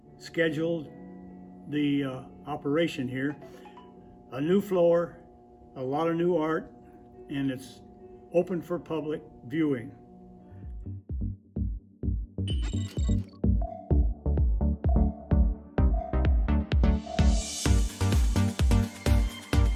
the operation here. A new floor, a lot of new art, and it's open for public viewing.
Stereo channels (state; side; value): identical; both; correlation 1.00